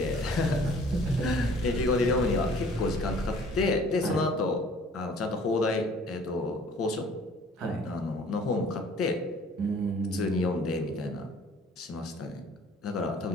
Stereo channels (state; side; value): normal; both; correlation 0.53